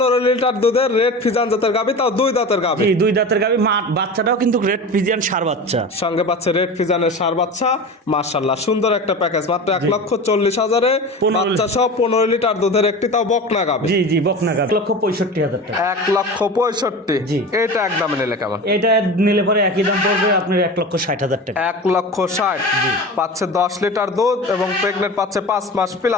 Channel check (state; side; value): normal; both; correlation 0.31